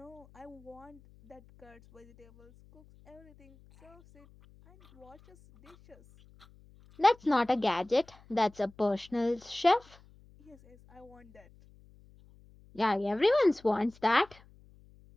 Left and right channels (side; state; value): left; noise; hum, 26 dB below the sound